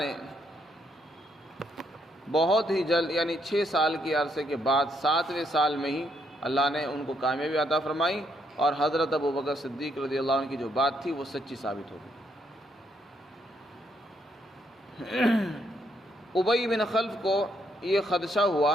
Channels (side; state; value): both; normal; correlation 0.74